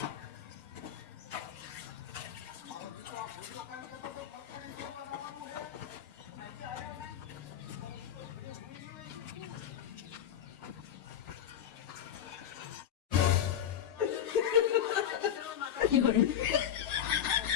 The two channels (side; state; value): right; quieter; 9.8 dB